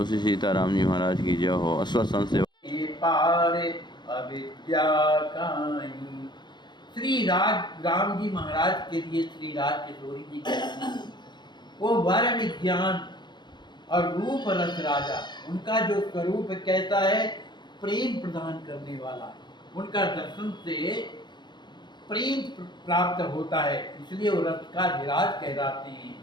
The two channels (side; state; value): right; late; 0.21 ms